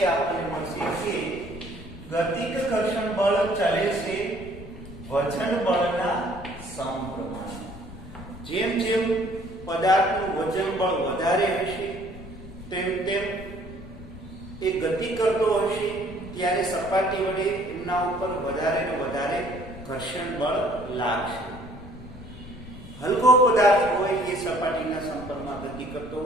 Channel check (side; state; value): left; noise; rumble, 15 dB below the sound